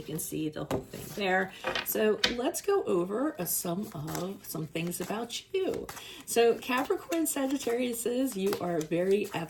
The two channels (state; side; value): identical; both; correlation 1.00